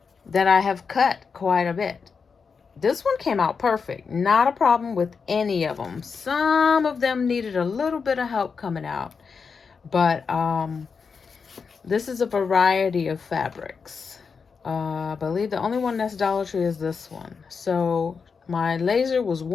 that I have cut quite a bit. This one came out perfect. Not a problem with any of them. Some of them needed a little bit of help coming out. But this is a variety of fabrics. I believe the only one that's Dollar Tree is this one. So my laser was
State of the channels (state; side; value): quieter; right; 5.5 dB